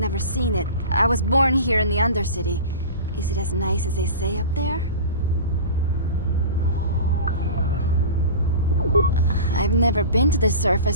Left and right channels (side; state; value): both; inverted; correlation -0.34